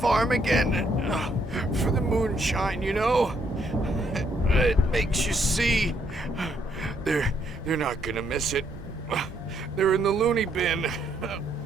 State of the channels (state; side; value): normal; both; correlation 0.72